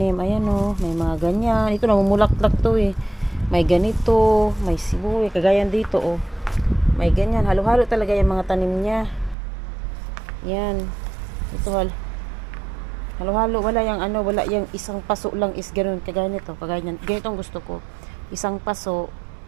Ayan o, may mga ganyan. Ito namumulaklak to eh. May ganito, may sibuyas, kagaya dito o. May ganyan, halo-halo talaga yung mga tanim niya. Yan. Ito halo-halo, wala yung isang paso lang is ganoon, kagaya nito, kagaya niyan. Ganito ang gusto ko. Isang paso,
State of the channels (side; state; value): left; drops out; at 9.3 s